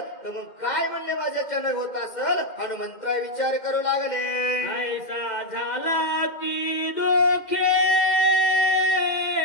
तर मग काय म्हणले माझ्याच्यानं होत असेल. हनुमंतराय विचार करू लागले. ऐसा झाला ती दोखे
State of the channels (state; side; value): late; right; 2.1 ms